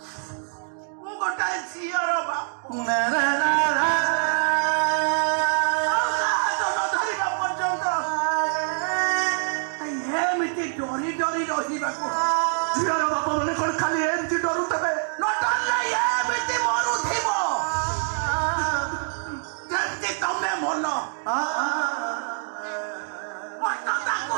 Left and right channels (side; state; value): left; silent; 62 dB below the other